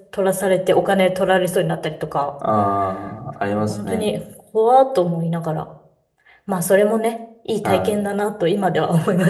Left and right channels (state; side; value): identical; both; correlation 1.00